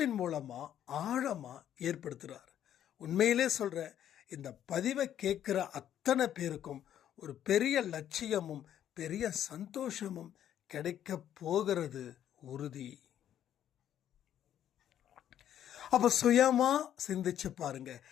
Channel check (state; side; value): quieter; right; 10.5 dB